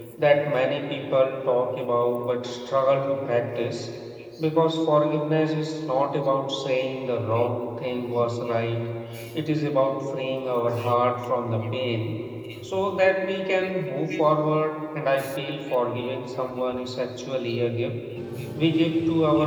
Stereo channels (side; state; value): both; identical; correlation 1.00